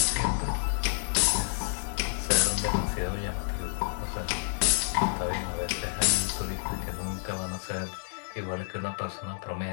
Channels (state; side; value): silent; right; digital silence